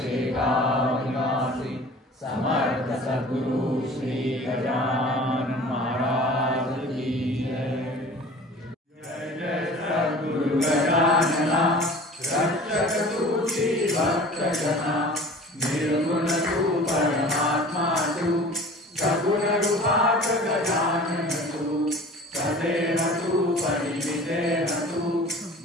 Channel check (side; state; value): both; normal; correlation 0.43